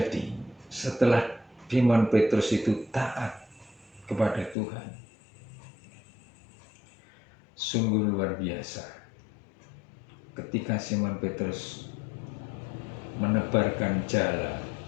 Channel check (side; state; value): right; drops out; at 4.5 s